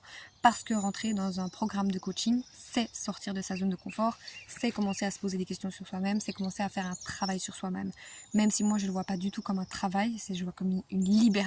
Parce que rentrer dans un programme de coaching, c'est sortir de sa zone de confort, c'est commencer à se poser des questions sur soi-même, c'est commencer à faire un travail sur soi-même. Même si moi je ne le vois pas du tout comme un travail, je le vois comme une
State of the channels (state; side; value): identical; both; correlation 1.00